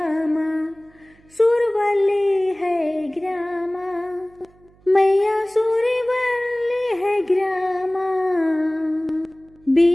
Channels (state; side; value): noise; right; hum, 30 dB below the sound